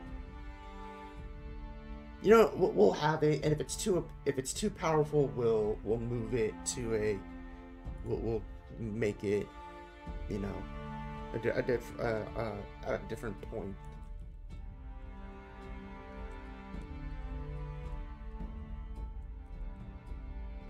we'll have it, and if it's too powerful, we'll move it to we'll make it, you know, a different point.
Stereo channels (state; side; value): identical; both; correlation 1.00